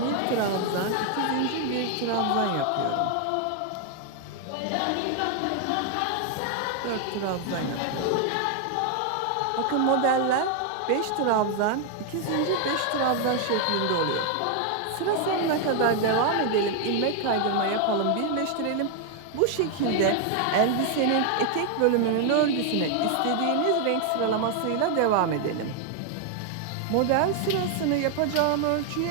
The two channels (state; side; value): different; both; correlation 0.00